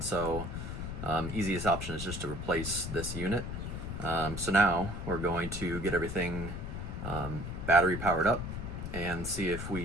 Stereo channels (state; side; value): noise; left; rumble, 6 dB below the sound